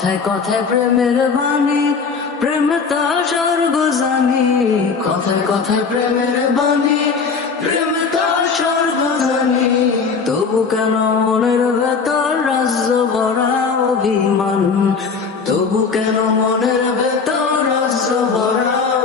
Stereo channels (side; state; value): right; quieter; 5.2 dB